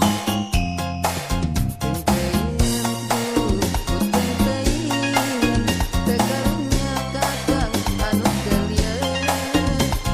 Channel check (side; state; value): both; identical; correlation 1.00